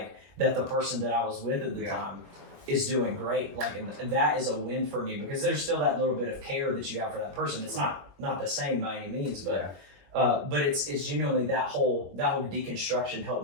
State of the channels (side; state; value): left; late; 21 ms